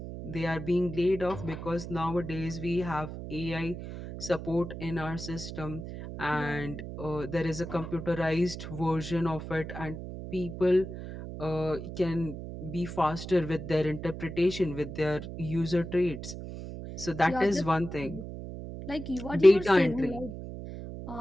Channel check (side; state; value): right; noise; hum, 9 dB below the sound